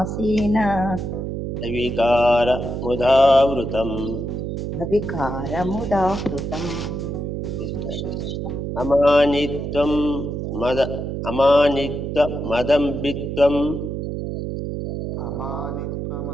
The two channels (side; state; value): right; noise; hum, 4 dB below the sound